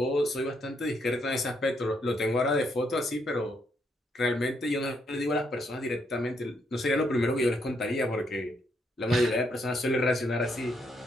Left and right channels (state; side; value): normal; both; correlation 0.75